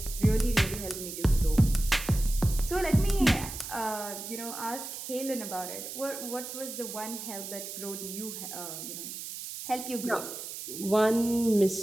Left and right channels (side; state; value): right; noise; hiss, 9 dB below the sound